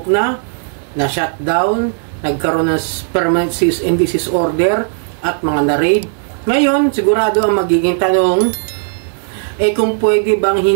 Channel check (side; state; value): left; silent; digital silence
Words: na shutdown, nagkaroon ng permanent cease and desist order, at mga na-raid. Ngayon, sigurado ang magiging tanong, kung pwede bang